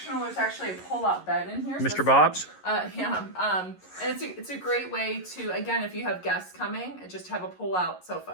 There's actually a pull-out bed in here. Mr. Bob's? Yeah. And it's a great way to, again, if you have guests coming, just have a pull-out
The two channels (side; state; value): right; late; 11 ms